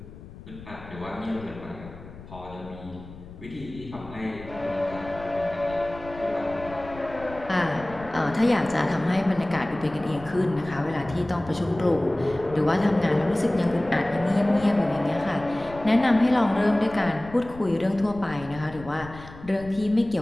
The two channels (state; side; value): noise; left; rumble, 16 dB below the sound